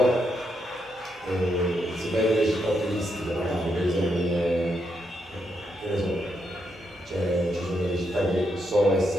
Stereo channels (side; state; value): both; normal; correlation 0.80